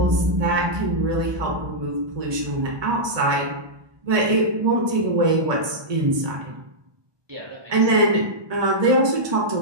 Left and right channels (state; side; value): late; left; 1.2 ms